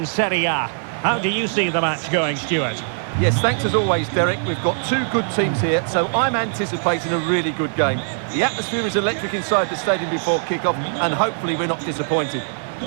Serie A. How do you see the match going, Stuart? Yes, thanks as always, Derek. We've got two good teams here, so I'm anticipating a really good game. The atmosphere is electric inside the stadium before kick-off, and hopefully we're not disappointed.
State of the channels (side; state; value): left; silent; digital silence